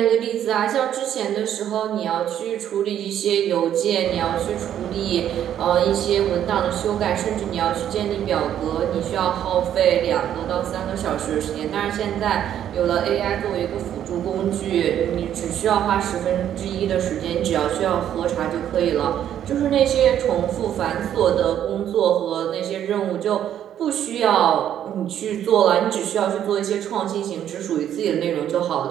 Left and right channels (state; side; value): quieter; left; 10.4 dB